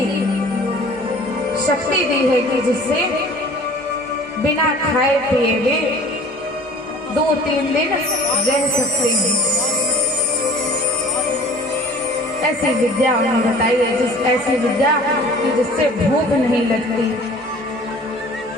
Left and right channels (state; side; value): normal; both; correlation 0.47